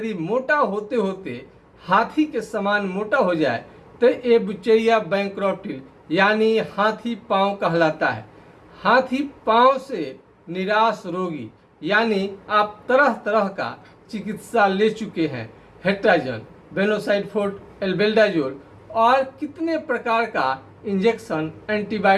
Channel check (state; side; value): identical; both; correlation 1.00